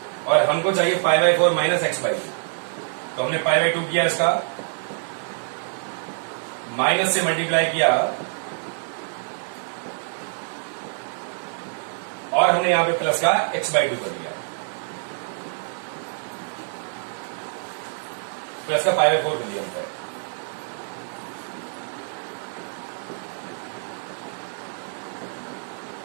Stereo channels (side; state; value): left; silent; digital silence